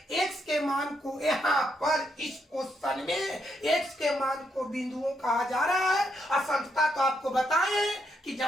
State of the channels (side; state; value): both; normal; correlation 0.78